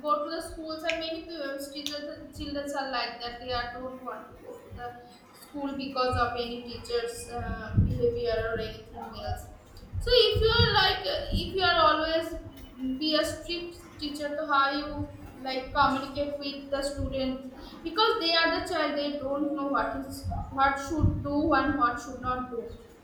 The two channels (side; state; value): both; identical; correlation 1.00